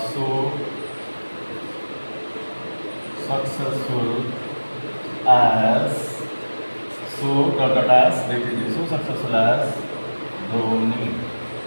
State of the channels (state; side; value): inverted; both; correlation -1.00